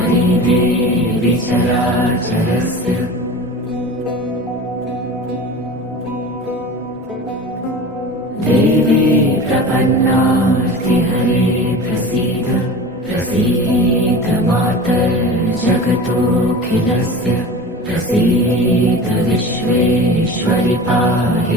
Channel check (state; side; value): normal; both; correlation 0.34